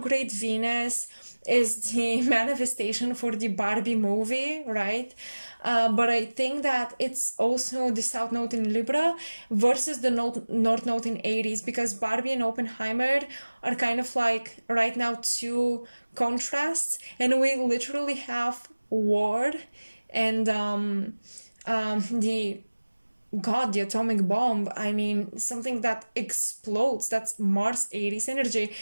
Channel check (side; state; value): both; inverted; correlation -1.00